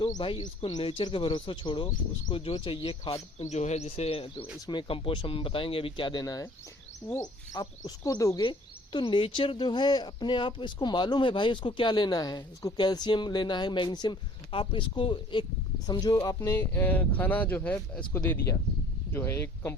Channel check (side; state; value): both; normal; correlation 0.53